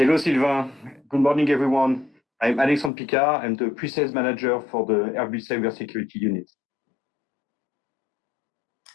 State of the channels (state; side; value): drops out; right; at 2.9 s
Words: Sylvain, good morning everyone. I'm Alexandre Picard, I'm the Pre-Sales Manager for the Airbus Cybersecurity unit.